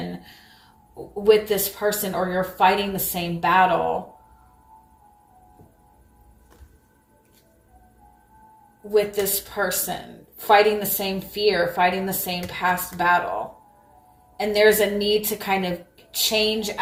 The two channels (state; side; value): identical; both; correlation 1.00